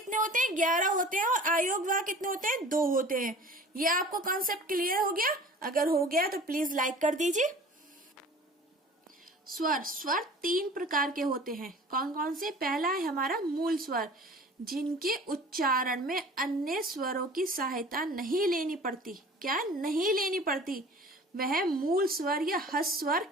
होते हैं, 11 होते हैं, और आयोग वाह कितने होते हैं, 2 होते हैं। ये आपको कॉन्सेप्ट क्लियर हो गया? अगर हो गया तो प्लीज लाइक कर दीजिए। स्वर 3 प्रकार के होते हैं। कौन कौन से? पहला है हमारा मूल स्वर, जिनके उच्चारण में अन्य स्वरों की सहायता नहीं लेनी पड़ती। क्या नहीं लेनी पड़ती? वह मूल स्वर या हस्त स्वर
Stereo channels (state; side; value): normal; both; correlation 0.44